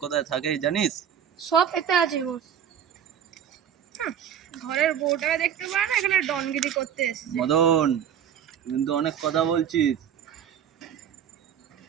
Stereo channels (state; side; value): quieter; left; 8.9 dB